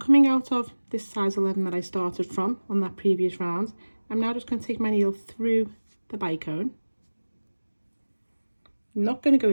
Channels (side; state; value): both; inverted; correlation -1.00